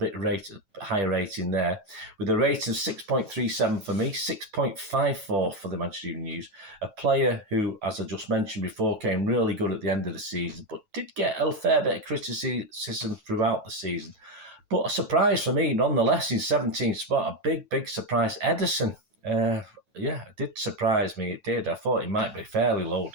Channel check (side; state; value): left; late; 9.2 ms